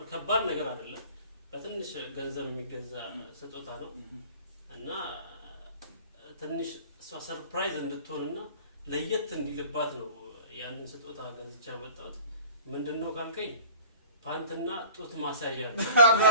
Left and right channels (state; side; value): inverted; both; correlation -0.43